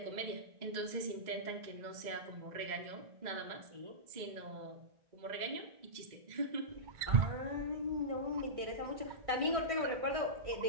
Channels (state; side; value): late; left; 2.0 ms